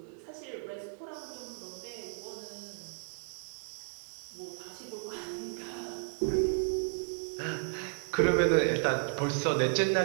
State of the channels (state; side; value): silent; left; 55 dB below the other